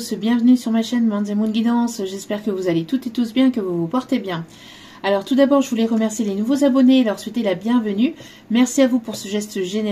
bienvenue sur ma chaîne Manz & Moon Guidance, j'espère que vous allez toutes et tous bien, que vous vous portez bien. Alors tout d'abord je voulais remercier les nouveaux abonnés et leur souhaiter la bienvenue. Merci à vous pour ce geste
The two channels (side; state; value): both; identical; correlation 1.00